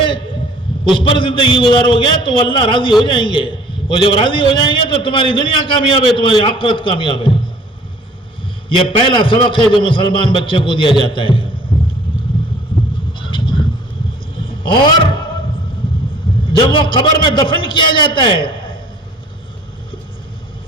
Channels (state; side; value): normal; both; correlation 0.53